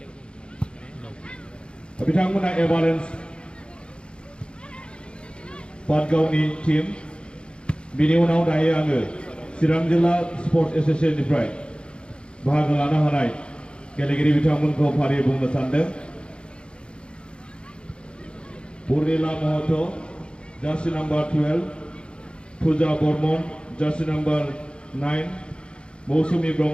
बिथांमोना एभारेन्स पाटगावनि team. बिनि उनाव दायो आङो चिरां जिल्ला स्पर्ट्स एसोसिएशननिफ्राय बाहागो लानो हानाय गेलेगिरि बिथांमोनखौ फारियै बुंनो सानदों। Purnila Mohoto jersey number 12, Puja Bormon jersey number 9, Mausumi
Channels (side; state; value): right; late; 0.055 ms